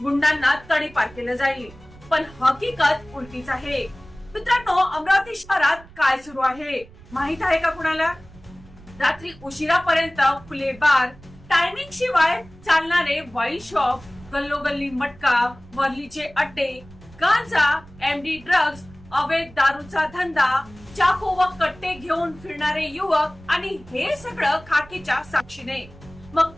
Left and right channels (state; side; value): noise; right; rumble, 22 dB below the sound